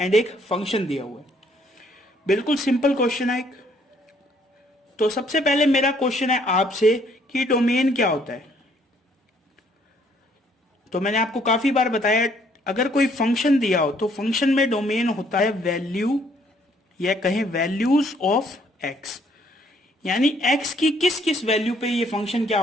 एक फंक्शन दिया हुआ है। बिल्कुल सिंपल क्वेश्चन है एक। तो सबसे पहले मेरा क्वेश्चन है आपसे कि डोमेन क्या होता है। तो मैंने आपको काफी बार बताया अगर कोई फंक्शन दिया हो तो फंक्शन में डोमेन होता है वैल्यू या कहें वैल्यूज ऑफ एक्स, यानी एक्स की किस किस वैल्यू पे ये फंक्शन क्या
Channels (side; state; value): both; normal; correlation 0.65